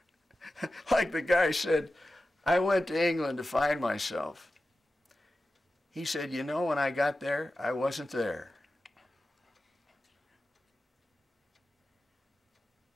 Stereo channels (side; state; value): both; normal; correlation 0.94